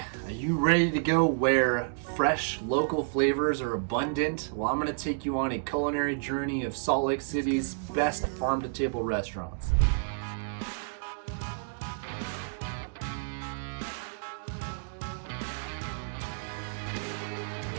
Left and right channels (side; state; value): left; silent; digital silence